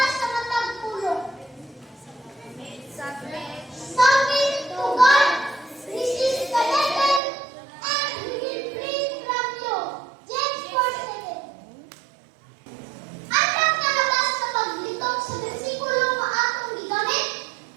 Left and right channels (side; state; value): left; drops out; at 7.2 s